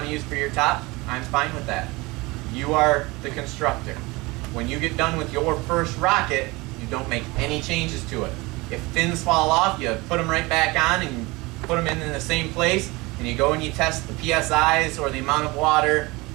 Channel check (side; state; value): left; quieter; 23.3 dB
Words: to use for your top, I'm fine with that. You are the constructor. When you get done with your first rocket, you don't make any changes to it. If fins fall off, you put them right back on and you put them in the same place and you go and you test the PSIs or the amount of water.